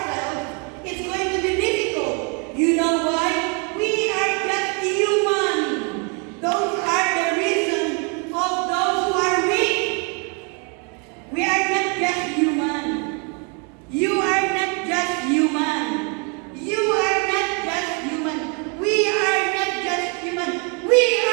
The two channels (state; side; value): quieter; left; 35.6 dB